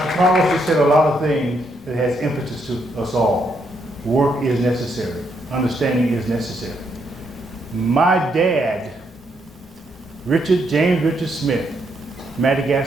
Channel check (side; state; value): both; normal; correlation 0.76